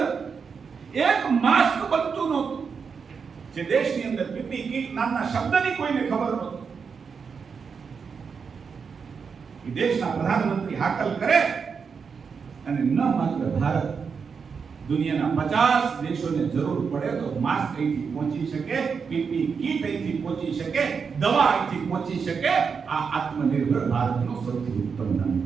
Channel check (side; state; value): left; quieter; 5.9 dB